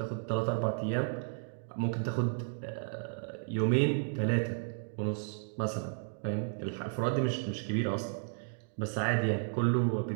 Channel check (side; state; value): left; silent; digital silence